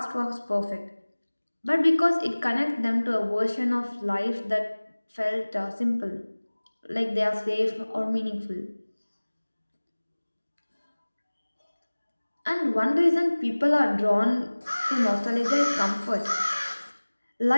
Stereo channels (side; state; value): both; inverted; correlation -1.00